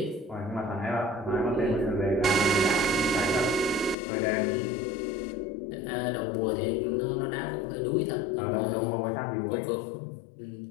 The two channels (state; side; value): drops out; right; at 4.0 s